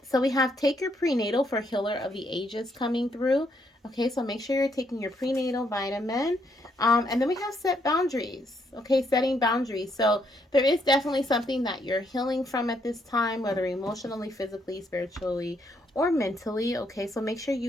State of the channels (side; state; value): both; normal; correlation 0.74